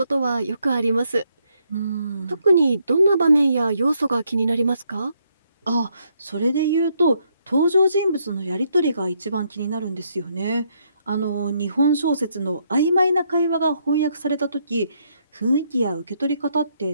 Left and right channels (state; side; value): inverted; both; correlation -0.74